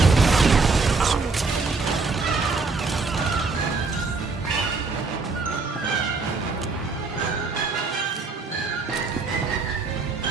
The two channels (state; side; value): quieter; left; 4.1 dB